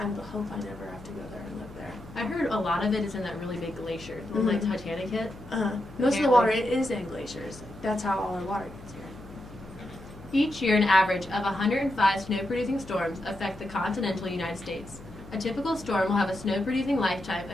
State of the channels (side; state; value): left; noise; hum, 17 dB below the sound